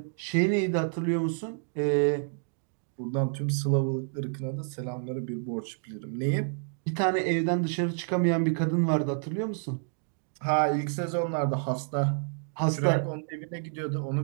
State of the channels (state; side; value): silent; left; digital silence